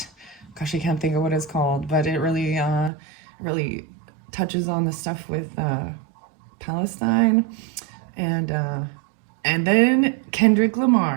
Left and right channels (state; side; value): drops out; left; at 2.9 s